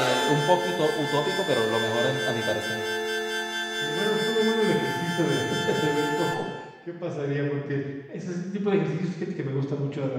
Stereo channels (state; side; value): identical; both; correlation 1.00